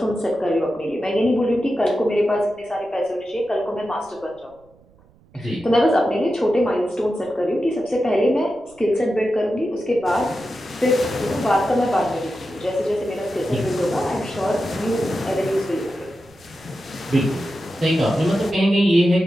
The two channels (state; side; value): noise; right; rumble, 29 dB below the sound